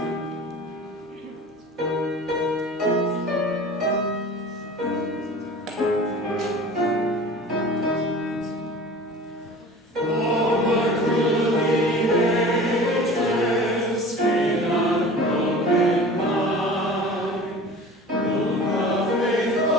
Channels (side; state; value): both; normal; correlation 0.40